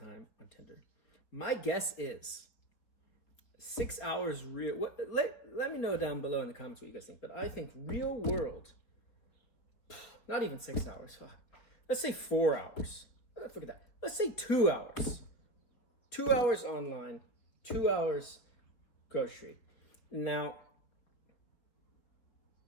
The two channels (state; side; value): late; right; 4.3 ms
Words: on Tinder? My guess is 6 hours real. Let me know down below in the comments what you guys think. But I think real world, not even 6 hours. Let's say 4 hours. Forget that. Let's say 2 hours. 2 hours online, 2 hours grocery. Now,